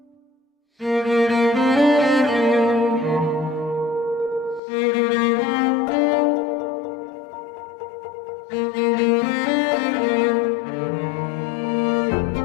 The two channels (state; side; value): drops out; right; at 4.6 s